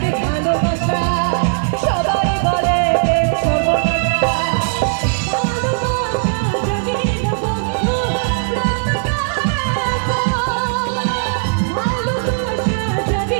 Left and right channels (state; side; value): silent; left; digital silence